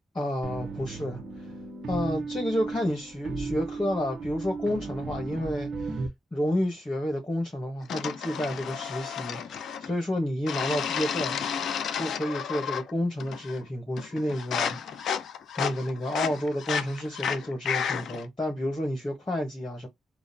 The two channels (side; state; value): both; normal; correlation 0.83